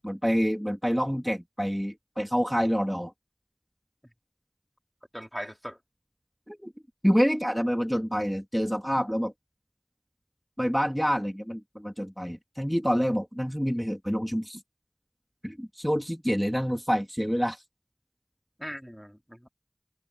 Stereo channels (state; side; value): identical; both; correlation 1.00